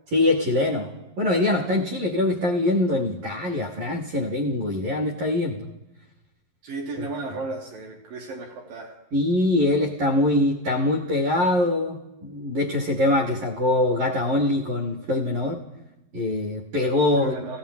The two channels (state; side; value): late; left; 11 ms